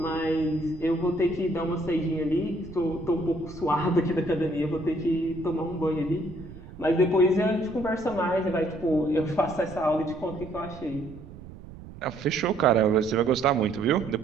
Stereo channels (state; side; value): noise; right; rumble, 15 dB below the sound